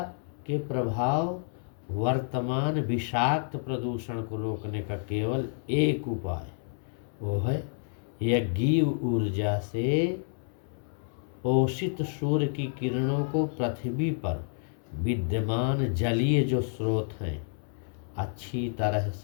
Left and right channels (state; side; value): silent; right; 58 dB below the other